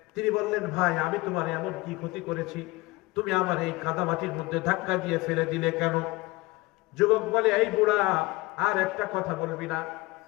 তিনি বললেন, ভাই আমি তোমার এমন কি ক্ষতি করেছি, তুমি আমার এই কাদামাটির মধ্যে ধাক্কা দিয়ে ফেলে দিলে কেন? যুবক বলে, এই বুড়া, আর একটা কথা বলবি না,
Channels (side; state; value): right; quieter; 21.5 dB